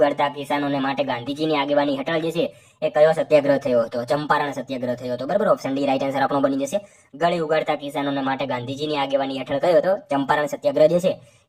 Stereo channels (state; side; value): identical; both; correlation 1.00